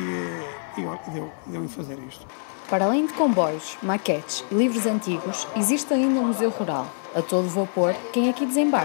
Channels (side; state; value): right; silent; digital silence